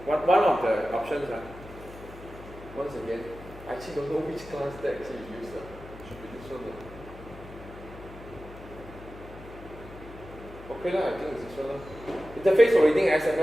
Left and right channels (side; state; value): left; noise; hum, 16 dB below the sound